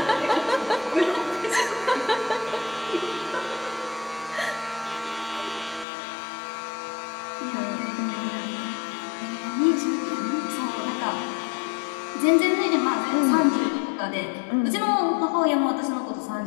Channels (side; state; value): right; drops out; at 5.9 s